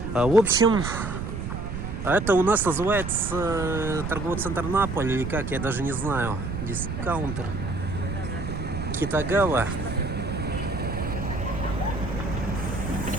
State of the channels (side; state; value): right; noise; rumble, 5 dB below the sound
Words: В общем, это у нас называется торговый центр Наполь, или как, я даже не знаю. Дискаунтер Китагава.